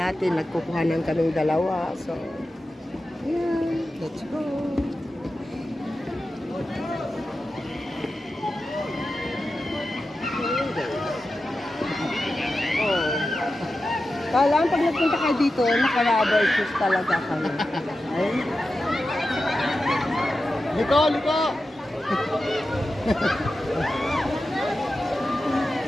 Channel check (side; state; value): both; normal; correlation 0.92